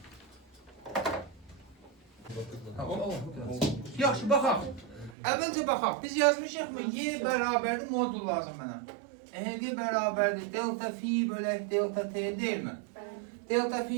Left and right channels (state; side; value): drops out; left; at 5.2 s